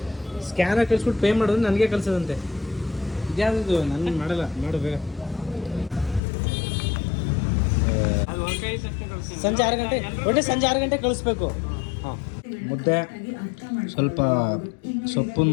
ಸ್ಕ್ಯಾನರ್ ಕಳಿಸ್ಬಿಟ್ಟು ಪೇ ಮಾಡೋದು ನನಗೆ ಕಳಿಸೋದಂತೆ. ಇದ್ಯಾವುದು ನಾನು ಮಾಡಲ್ಲ. ಮಾಡು ಬೇಗ. ಸಂಜೆ 6 ಗಂಟೆ, ಒಟ್ಟೆ ಸಂಜೆ 6 ಗಂಟೆ ಕಳಿಸ್ಬೇಕು. ಹಾಂ, ಮುದ್ದೆ, ಸ್ವಲ್ಪ ಸೊಪ್ಪು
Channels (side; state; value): right; drops out; at 6.2 s